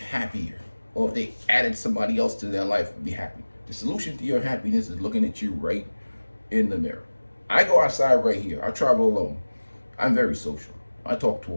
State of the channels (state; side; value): inverted; both; correlation -1.00